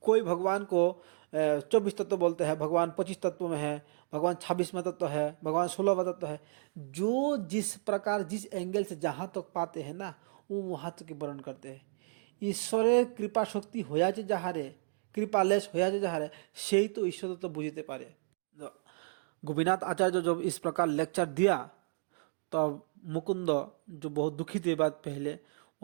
कोई भगवान को 24 तत्व बोलते हैं, भगवान 25 तत्व में है, भगवान 26वां तत्व है, भगवान 16वां तत्व है। जो जिस प्रकार जिस एंगल से जहाँ तक पाते हैं ना, वो वहाँ तक वर्णन करते हैं। ईश्वर कृपा शक्ति होया जहाँ रे কৃপালেশ হইয়াছে যাহারে সেই তো ঈশ্বর তো বুঝতে পারে। गोपीनाथ आचार्य जब इस प्रकार लेक्चर दिया तब मुकुंद जो बहुत दुखी थे बात पहले,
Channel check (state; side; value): silent; left; digital silence